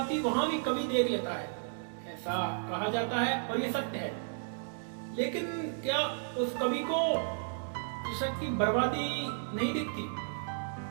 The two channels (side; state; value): left; silent; digital silence